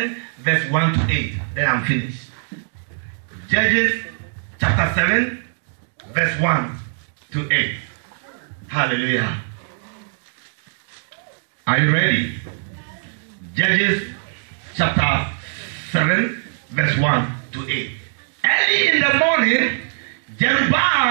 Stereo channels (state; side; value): silent; left; digital silence